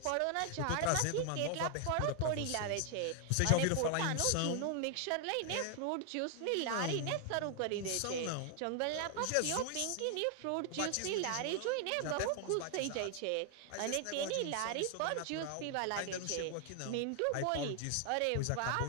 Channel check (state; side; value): different; both; correlation 0.00